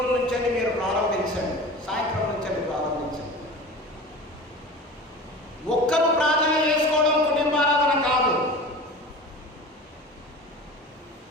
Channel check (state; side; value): normal; both; correlation 0.35